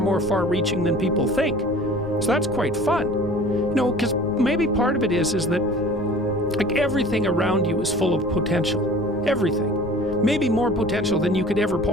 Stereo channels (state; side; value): noise; left; rumble, 14 dB below the sound